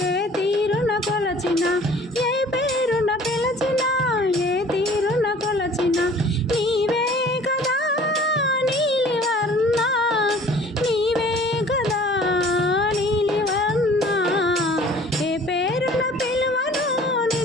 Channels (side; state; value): both; normal; correlation 0.50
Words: ఏ తీరున కొలచినా, ఏ పేరున పిలచినా, ఏ తీరున కొలచినా నీవే కదా నీలివర్ణ, నీవే కదా నీలివర్ణ. ఏ పేరున పిలువను